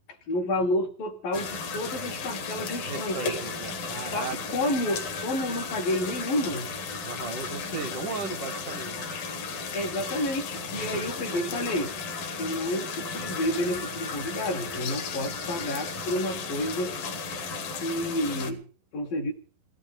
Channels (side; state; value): right; late; 11 ms